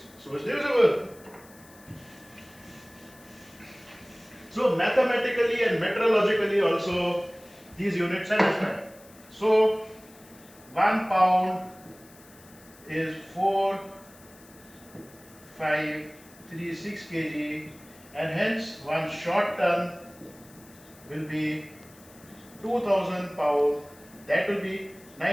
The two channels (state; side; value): noise; left; hiss, 24 dB below the sound